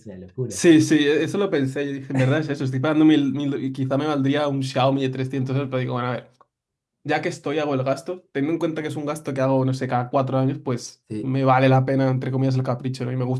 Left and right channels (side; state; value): both; identical; correlation 1.00